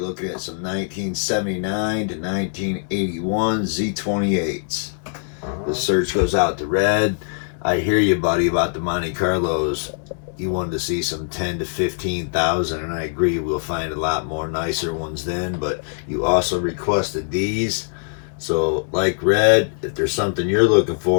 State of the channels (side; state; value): right; silent; digital silence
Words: at some 1979 to 1981 Z28's. The search goes out to Red. I hear you, buddy, about the Monte Carlos. You wanted to see some 10 to 15,000, and I agree we'll find a lot more nicer ones then, but you also requested these. So, like Red, if there's something you're looking